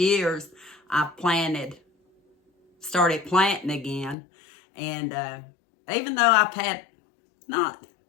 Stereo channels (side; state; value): right; drops out; at 4.2 s